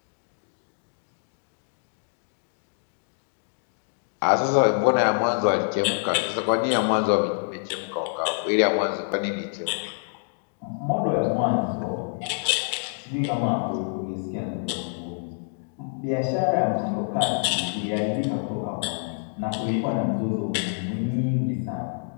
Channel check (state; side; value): silent; right; digital silence